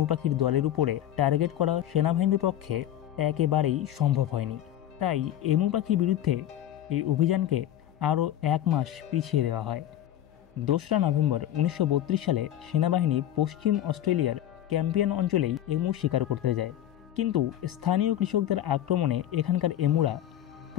পাখির দলের উপরে টার্গেট করা সেনাবাহিনীর পক্ষে একেবারেই সম্ভব হয়নি। তাই এমু পাখির বিরুদ্ধে এই অভিযানকে আরও 1 মাস পিছিয়ে দেওয়া হয়। 2রা নভেম্বর 1932 সালে সেনাবাহিনী পশ্চিম অস্ট্রেলিয়ার ক্যাম্পিয়ন অঞ্চলেই এমু শিকার করতে যায়, কিন্তু স্থানীয় কৃষকদের আক্রমণে এখানকার এমুরা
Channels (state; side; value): quieter; right; 12.0 dB